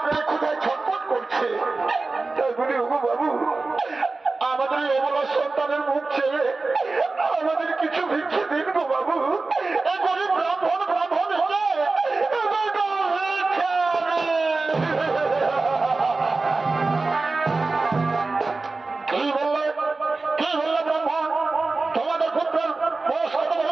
পেরে ক্ষুধায় ছটফট করছে। তাই বলি ওগো বাবু, আমাদের এই অবলা সন্তানের মুখ ছেড়ে আমাদের কিছু ভিক্ষে দিন গো বাবু। এই গরিব ব্রাহ্মণ হলে কি বললে ব্রাহ্মণ? তোমাদের পুত্রের বয়স কত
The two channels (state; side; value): quieter; left; 3.6 dB